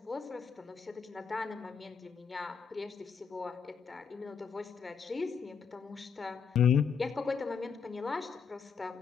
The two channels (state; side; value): quieter; right; 6.2 dB